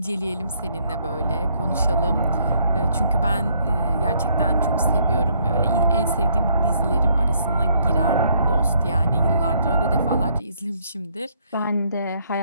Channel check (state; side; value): inverted; both; correlation -0.68